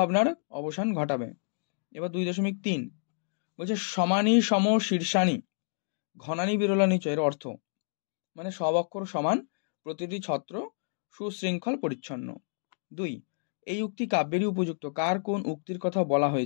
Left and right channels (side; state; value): right; silent; digital silence